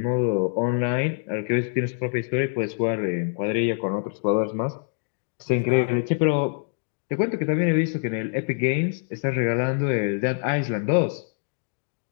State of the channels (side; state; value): right; silent; 59 dB below the other